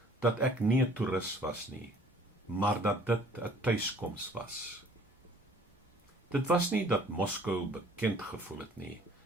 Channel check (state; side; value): normal; both; correlation 0.54